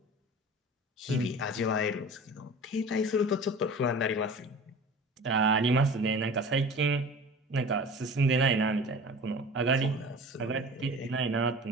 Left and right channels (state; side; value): normal; both; correlation 0.39